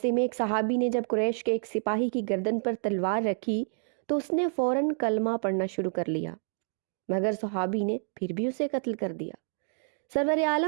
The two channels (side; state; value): left; silent; 59 dB below the other